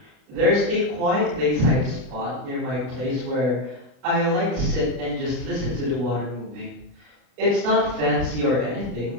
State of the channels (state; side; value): late; left; 40 ms